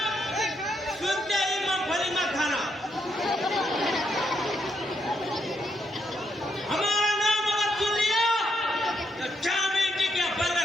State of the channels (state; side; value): normal; both; correlation 0.77